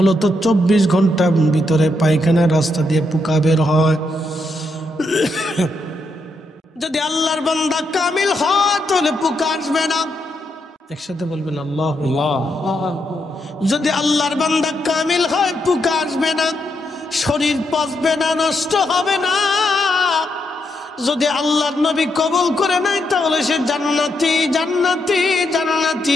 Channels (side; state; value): both; normal; correlation 0.81